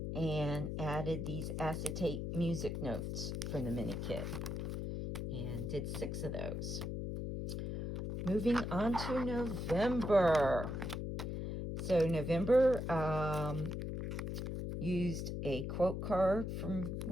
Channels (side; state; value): left; noise; hum, 3 dB below the sound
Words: and added these acetate music notes from the mini kit, and did 6 of those. Moving on to November. So November, used a quote card from